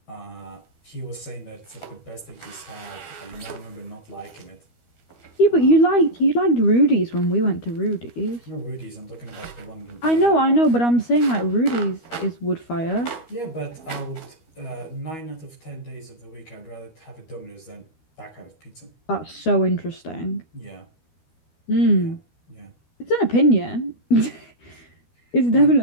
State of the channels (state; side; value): late; right; 12 ms